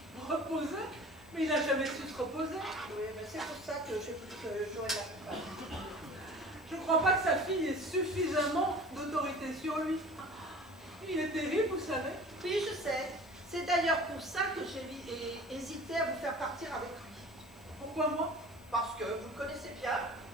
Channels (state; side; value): noise; left; hiss, 26 dB below the sound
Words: Reposer? Mais il n'a jamais su se reposer. Oui, mais c'est pour ça que j'ai voulu que j'aurais la coupable. Je ne crois pas que sa fille ait suffisamment d'autorité sur lui. Il est terrible, vous savez. Oui, je sais. C'est d'ailleurs pour ça que j'ai hésité à vous faire partir avec lui. Pourquoi moi? Parce que vous le connaissez bien